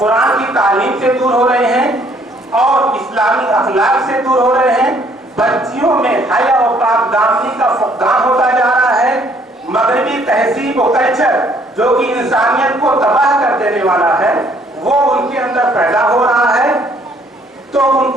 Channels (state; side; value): normal; both; correlation 0.63